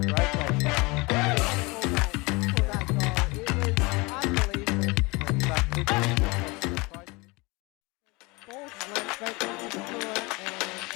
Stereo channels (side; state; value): right; quieter; 25.6 dB